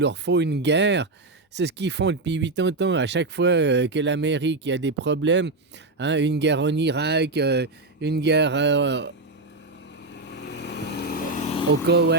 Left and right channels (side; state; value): left; quieter; 3.1 dB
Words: faut une guerre. C'est ce qu'ils font depuis 80 ans. À chaque fois que l'Amérique a des problèmes, hein, une guerre en Irak, une guerre au